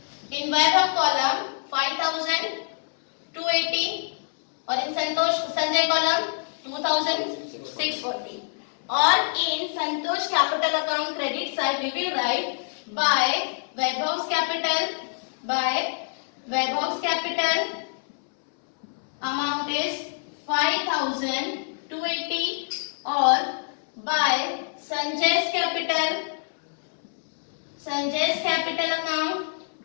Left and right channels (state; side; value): silent; right; 61 dB below the other